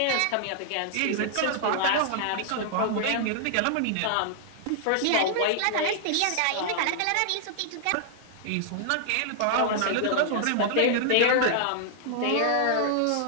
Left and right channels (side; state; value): both; different; correlation -0.01